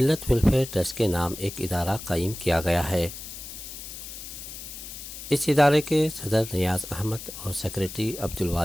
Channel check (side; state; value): left; noise; hiss, 11 dB below the sound